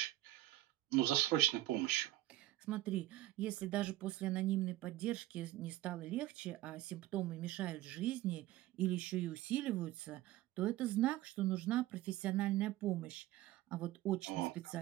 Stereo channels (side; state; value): left; quieter; 15.8 dB